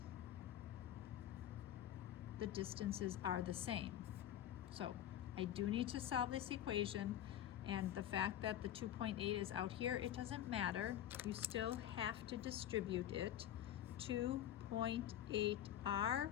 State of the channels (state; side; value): quieter; right; 11.5 dB